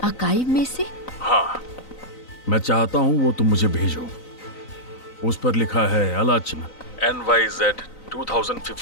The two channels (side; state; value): right; late; 3.9 ms